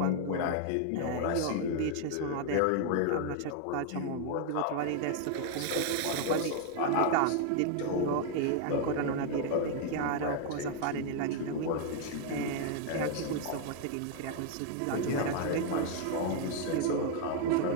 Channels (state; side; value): different; both; correlation 0.00